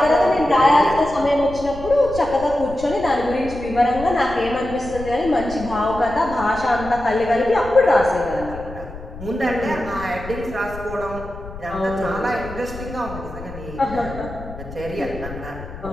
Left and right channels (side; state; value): left; noise; rumble, 13 dB below the sound